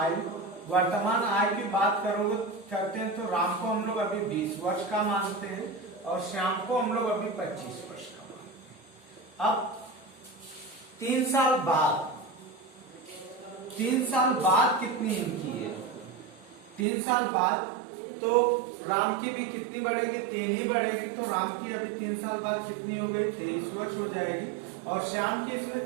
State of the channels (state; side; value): drops out; left; at 16.9 s